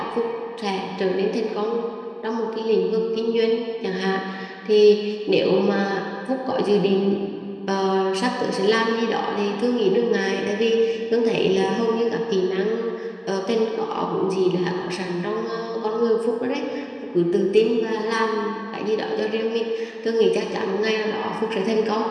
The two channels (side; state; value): both; identical; correlation 1.00